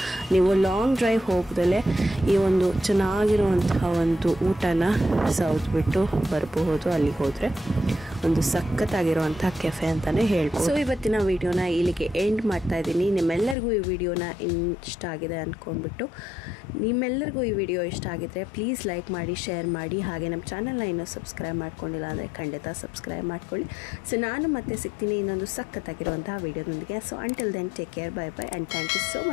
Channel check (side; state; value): right; drops out; at 13.6 s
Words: ನೀವು ಲಾಂಗ್ ಡ್ರೈವ್ ಹೋಗ್ದಲೇ ಈ ಒಂದು ಚೆನ್ನಾಗಿರುವಂತಹ ಒಂದು ಊಟನ ಸೌದ್ಬಿಟ್ಟು ಬರಬಹುದು. ಅಲ್ಲಿಗೆ ಹೋದರೆ ಒಂದು ಸಖತ್ತಾಗಿರುವಂಥ ಕೆಫೆ ಅಂತಲೇ ಹೇಳ್ಬೋದು. ಸೊ ಇವತ್ತಿನ ವಿಡಿಯೋನ ಇಲ್ಲಿಗೆ ಎಂಡ್ ಮಾಡ್ತಾ ಇದ್ದೀನಿ. ನಿಮ್ಮೆಲ್ಲರಿಗೂ ಈ ವಿಡಿಯೋನ ಇಷ್ಟ ಆಗಿದೆ ಅಂದ್ಕೊಂಡ್ಬಿಟ್ಟು, ನಿಮ್ಮೆಲ್ಲರಿಗೂ ಈ ವಿಡಿಯೋ ಇಷ್ಟ ಆಗಿದ್ರೆ ಪ್ಲೀಸ್ ಲೈಕ್ ಮಾಡಿ, ಶೇರ್ ಮಾಡಿ. ಹಾಗೆ ನಮ್ಮ ಚಾನಲ್ನ ಇನ್ನೂ ಸಬ್ಸ್ಕ್ರೈಬ್ ಮಾಡ್ಕೊಂಡಿಲ್ಲ ಅಂದರೆ ಖಂಡಿತ ಸಬ್ಸ್ಕ್ರೈಬ್ ಮಾಡ್ಕೊಳ್ಳಿ. ಸೊ ನಾನು ಮತ್ತೆ ಸಿಗ್ತೀನಿ ಇನ್ನೊಂದು ಸಖತ್ತಾಗಿರುವಂತಹ ವಿಡಿಯೋದೊಂದಿಗೆ. So until then take care, bye bye and thank you so